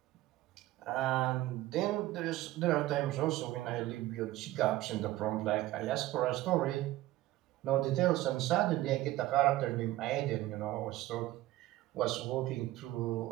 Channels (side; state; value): left; quieter; 16.3 dB